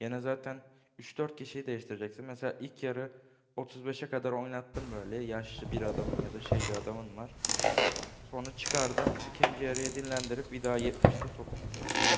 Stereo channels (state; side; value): identical; both; correlation 1.00